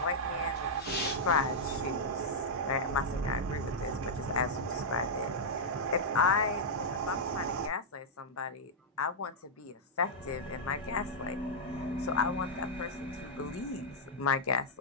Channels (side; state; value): both; normal; correlation -0.06